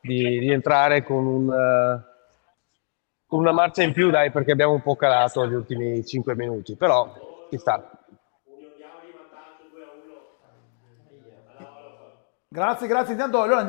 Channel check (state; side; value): silent; right; digital silence